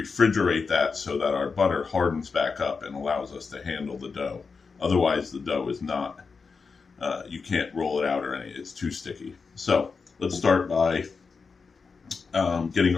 that so that our butter hardens back up and allows us to handle the dough. Otherwise, the dough is not, you can't roll it out or anything. It's too sticky. So let's start by getting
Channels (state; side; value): quieter; right; 4.9 dB